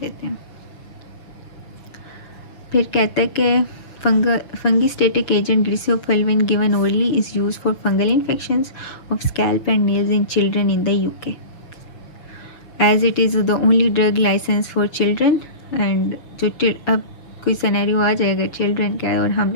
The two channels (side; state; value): right; late; 6.1 ms